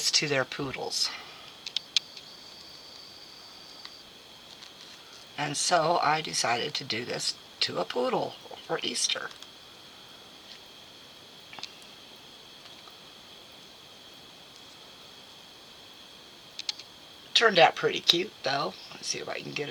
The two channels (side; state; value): both; identical; correlation 1.00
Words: to their poodles. And so I decided to do this to a poodle for Easter. Turned out pretty cute though. Let's see if I can get